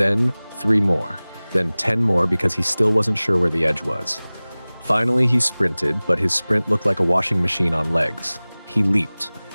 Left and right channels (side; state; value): both; inverted; correlation -0.99